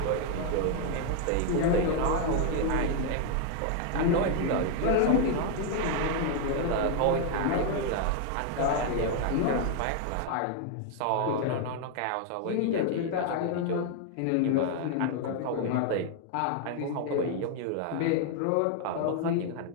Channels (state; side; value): different; both; correlation 0.00